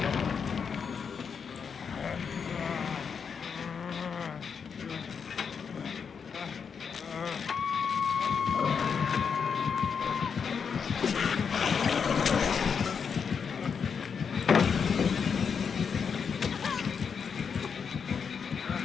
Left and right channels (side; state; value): right; quieter; 6.4 dB